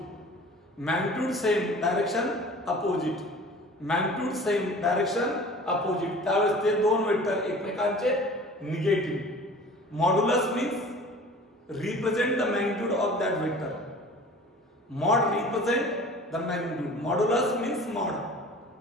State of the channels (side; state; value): both; normal; correlation 0.43